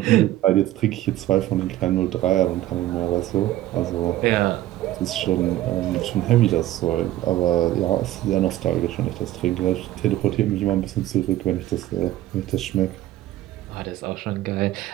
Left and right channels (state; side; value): quieter; left; 14.6 dB